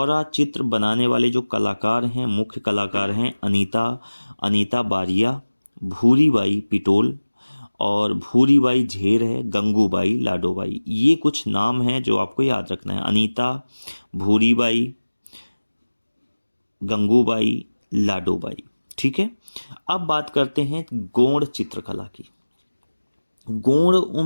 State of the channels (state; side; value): inverted; both; correlation -1.00